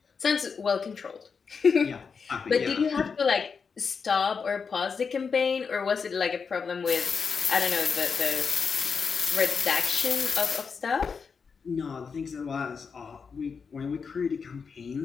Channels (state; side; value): quieter; right; 5.6 dB